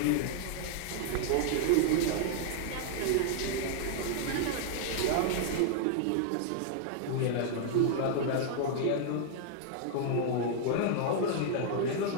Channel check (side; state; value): both; different; correlation -0.01